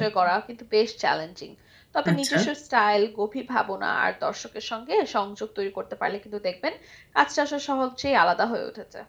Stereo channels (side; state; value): both; identical; correlation 1.00